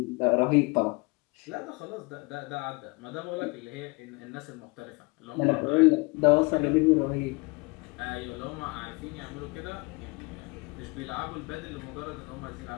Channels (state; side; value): quieter; right; 27.6 dB